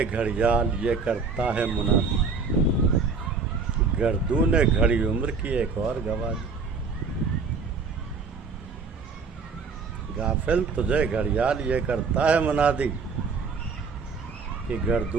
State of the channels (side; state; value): left; quieter; 4.9 dB